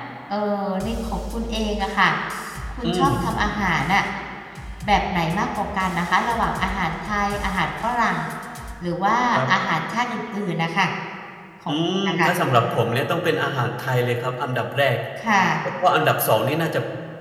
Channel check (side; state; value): both; identical; correlation 1.00